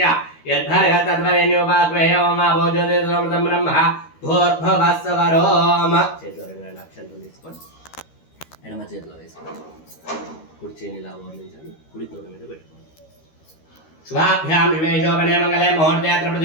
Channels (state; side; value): late; right; 13 ms